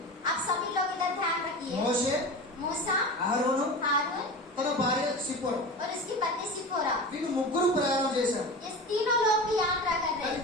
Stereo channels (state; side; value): normal; both; correlation 0.30